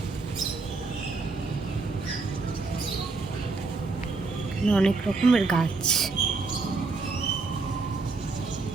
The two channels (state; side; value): quieter; left; 4.0 dB